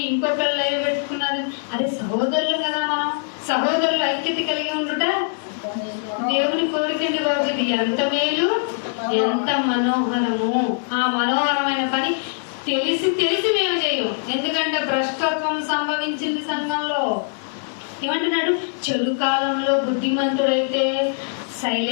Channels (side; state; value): right; silent; digital silence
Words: ఇంకొకళ్ళు లైవ్ పెట్టుకున్నారని. అరే సహోదరులు కదా మనం, సహోదరులు ఐక్యత కలిగి ఉండుట దేవుని కోరికండి బాబు. ఇది ఎంత మేలు, ఎంత మనోహరము. ఆ మనోహరమైన పని తెలిసి తెలిసి మేము చేయము. ఎందుకంటే భ్రష్టత్వం సంభవించింది సంఘంలో. ఏమంటున్నాడు? చెడు కాలంలో బుద్ధిమంతుడైతే